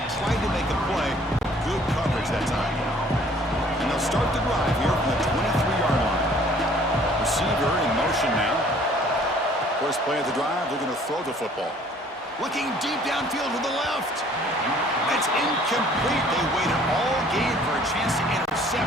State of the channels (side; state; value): both; normal; correlation 0.56